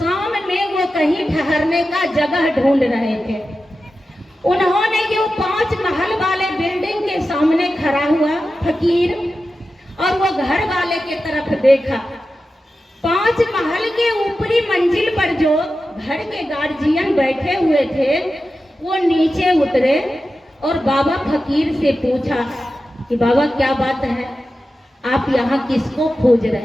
में वो कहीं ठहरने का जगह ढूंढ रहे थे। उन्होंने ये 5 महल वाले बिल्डिंग के सामने खड़ा हुआ फकीर और वो घर वाले के तरफ देखा। 5 महल के ऊपरी मंजिल पर जो घर के गार्जियन बैठे हुए थे वो नीचे उतरे और बाबा फकीर से पूछा कि बाबा क्या बात है, आप यहाँ किसको खोज रहे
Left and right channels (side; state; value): both; normal; correlation 0.92